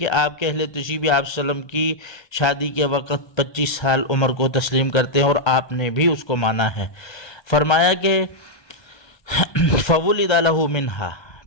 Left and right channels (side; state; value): right; late; 1.3 ms